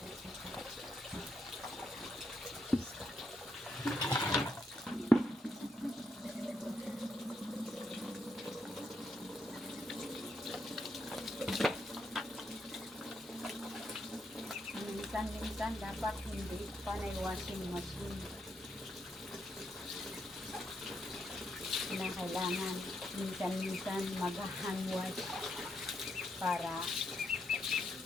Minsan dapat hindi panay washing machine. Na kailangan minsan mag-hand wash para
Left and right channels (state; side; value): normal; both; correlation 0.79